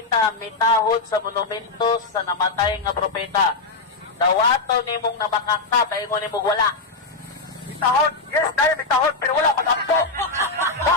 mitahod sa monumento sa namatay nga propeta. Dawato nimong namakaka, paingon nimong wala. Mitahod. Yes, dahil mitahod, pero wala magampo.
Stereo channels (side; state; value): right; quieter; 3.7 dB